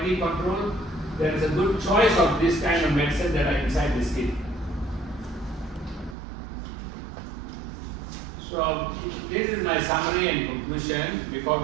control, there is a good choice of this kind of medicine that are inside this kit. So this is my summary and conclusion before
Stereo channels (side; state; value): left; drops out; at 6.2 s